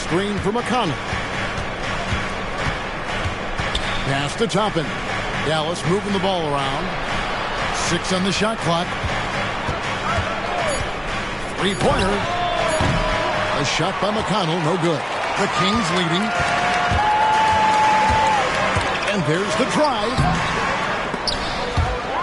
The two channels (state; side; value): identical; both; correlation 1.00